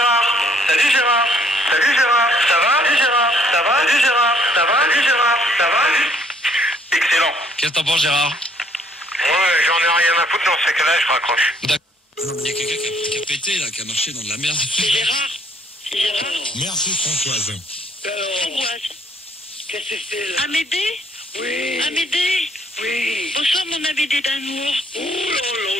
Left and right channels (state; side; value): normal; both; correlation 0.64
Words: Salut Gérard. Salut Gérard. Ça va? Salut Gérard. Ça va? Salut Gérard. Ça va? Salut Gérard. Ça va? Excellent. Qu'est-ce que t'en penses, Gérard? Ouais, j'en ai rien à foutre dans ce cas-là, je raccroche. Il y a quelqu'un qui a pété, là, qui a marché dans de la merde. C'est Gérard. C'est Gérard. Merci Françoise. Françoise. Qu'est-ce que c'est là? Amédée? Oui. Amédée? Oui. Bonsoir mon Amédée d'amour. Oh là là,